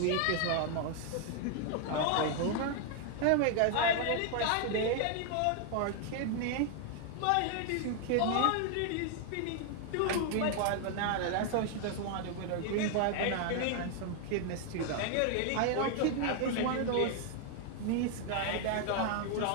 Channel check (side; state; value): both; different; correlation 0.00